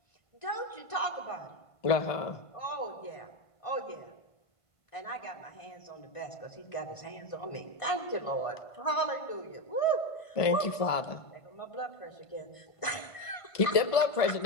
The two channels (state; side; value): late; right; 1.5 ms